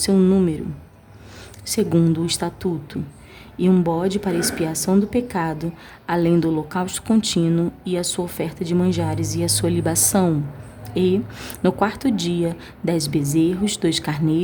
número, segundo o estatuto, e um bode para expiação do pecado, além do holocausto contínuo, e a sua oferta de manjares e a sua libação. E, no quarto dia, 10 bezerros, 2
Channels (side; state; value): both; identical; correlation 1.00